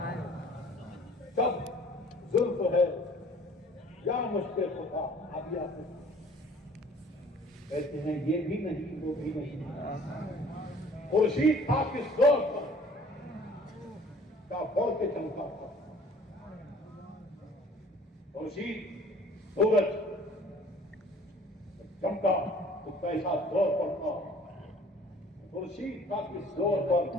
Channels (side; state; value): both; normal; correlation 0.52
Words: جب زلف ہے یا مشکل خطا. اب یا کہتے ہیں یہ بھی نہیں وہ بھی نہیں. خورشید تھا کس دور پر کا بڑھ کے چمکا تھا. خورشید سورج چمکا تو کیسا زور پر تھا. خورشید کا کس زور پر